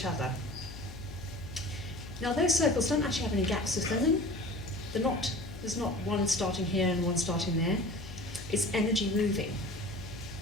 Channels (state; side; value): noise; left; hum, 13 dB below the sound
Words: other. Now those circles don't actually have any gaps within them. There's not one starting here and one starting there. It's energy moving.